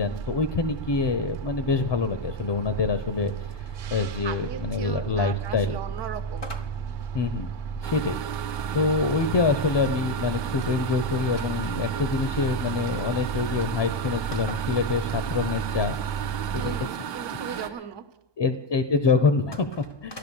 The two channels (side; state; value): right; late; 1.2 ms